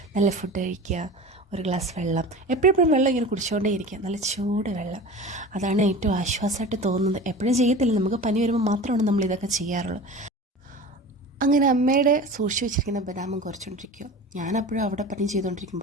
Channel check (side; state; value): both; normal; correlation 0.35